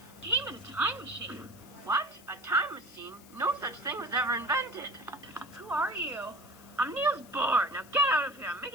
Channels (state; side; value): noise; left; hiss, 23 dB below the sound